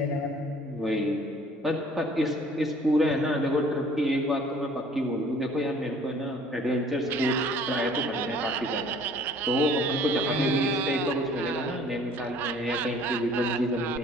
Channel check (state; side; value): normal; both; correlation 0.53